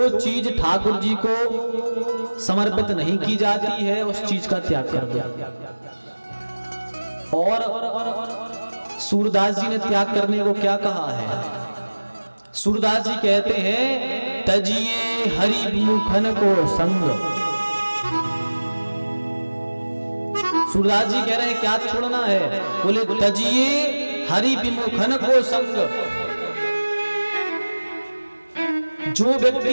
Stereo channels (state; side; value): inverted; both; correlation -1.00